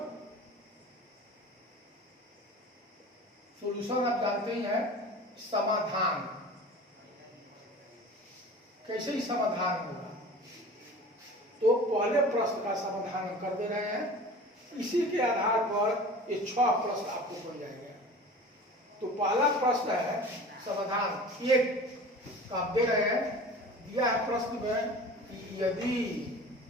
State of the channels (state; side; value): normal; both; correlation 0.39